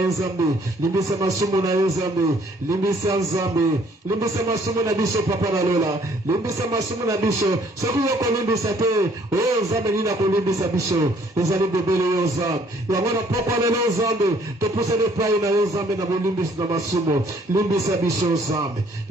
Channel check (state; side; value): normal; both; correlation 0.62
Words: Zambe limbisa masumu na yo Zambe limbisa Zambe limbisa masumu na biso papa na lola limbisa masumu na biso soki yo kolimbisa te o Zambe nina kolimbisa biso ezali bebele yo Zambe yango na poko lelo Zambe topusa ne pai na yo Zambe na bolimbisa na masumu limbisa biso Zambe